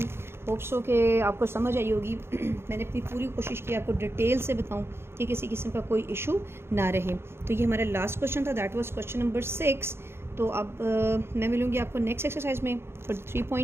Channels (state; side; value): late; left; 0.12 ms